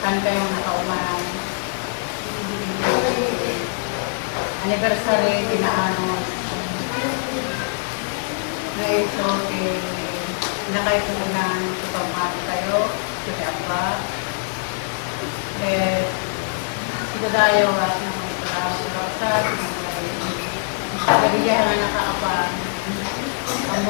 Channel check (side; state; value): right; silent; digital silence